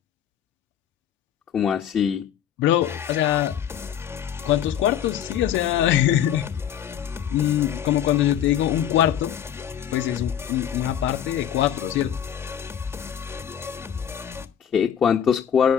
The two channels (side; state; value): right; quieter; 9.7 dB